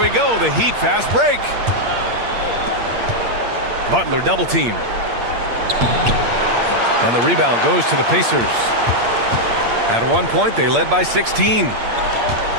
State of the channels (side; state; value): left; late; 8.6 ms